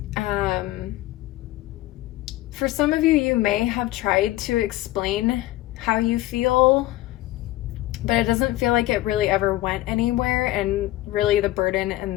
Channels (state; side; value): quieter; right; 16.8 dB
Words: For some of you, you may have tried to explain how you feel, but it doesn't feel like it really ever went anywhere, and really the burden